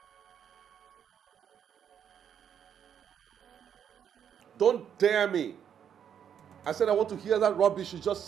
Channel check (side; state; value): left; quieter; 8.5 dB